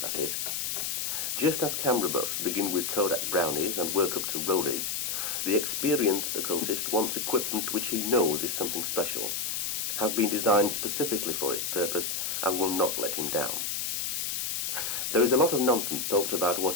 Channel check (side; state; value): left; noise; hiss, 1 dB below the sound